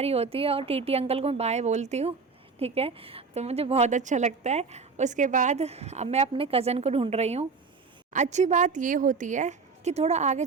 होती है और टीटी अंकल को मैं बाय बोलती हूँ, ठीक है। तो मुझे बहुत अच्छा लगता है। उसके बाद अब मैं अपने कज़न को ढूंढ रही हूँ। अच्छी बात ये होती है कि थोड़ा आगे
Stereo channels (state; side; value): quieter; left; 4.8 dB